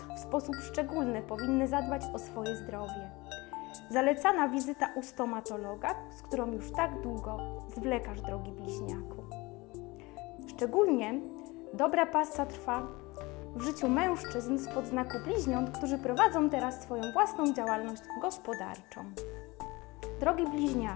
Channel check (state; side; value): quieter; right; 23.1 dB